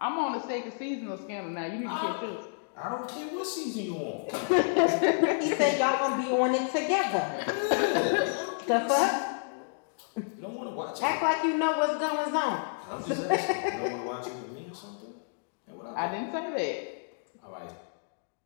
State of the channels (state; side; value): silent; right; digital silence